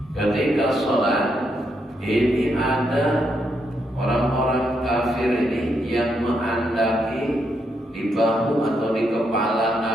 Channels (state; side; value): normal; both; correlation 0.78